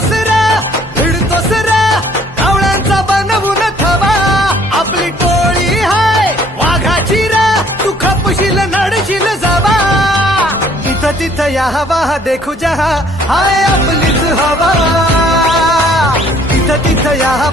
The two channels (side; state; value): both; normal; correlation 0.60